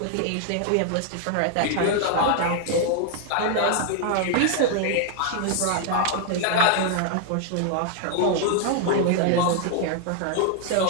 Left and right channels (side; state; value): both; different; correlation 0.00